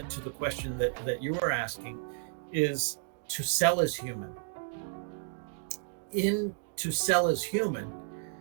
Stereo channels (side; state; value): left; silent; 56 dB below the other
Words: to the question that you were asking, is To Sell is Human. In To Sell is Human,